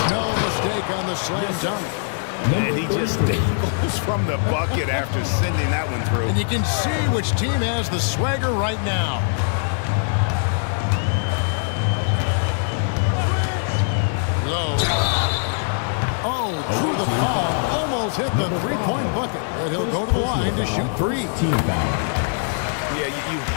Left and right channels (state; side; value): silent; right; digital silence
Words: no mistake on the slam dunk. And he just dangles from the bucket after sending that one through. And you can see which team has the swagger right now. Low. Oh, drew the foul and almost hit the three-point bucket. But he'll go to the line to shoot 3. Yeah, you